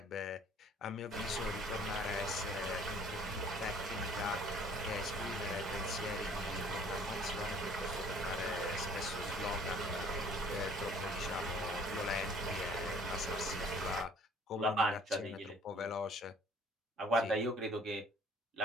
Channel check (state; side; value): normal; both; correlation 0.55